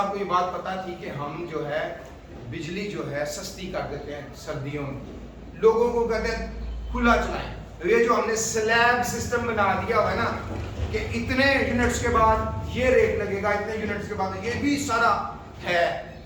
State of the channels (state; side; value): identical; both; correlation 1.00